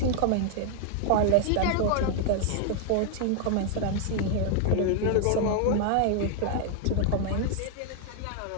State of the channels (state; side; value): different; both; correlation 0.00